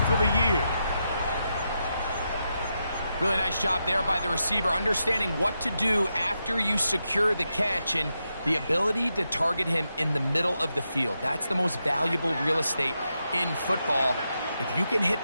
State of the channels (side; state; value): both; inverted; correlation -0.86